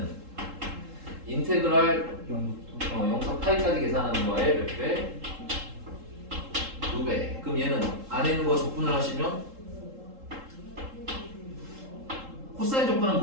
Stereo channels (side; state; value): left; late; 3.7 ms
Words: 인테그랄 0부터 파이까지 계산하는 거에 몇 배? 2배. 그럼 얘는 안에 있는 거 적분을 하시면 코사인 적분은